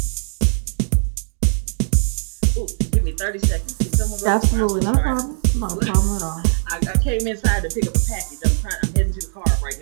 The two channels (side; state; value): left; silent; digital silence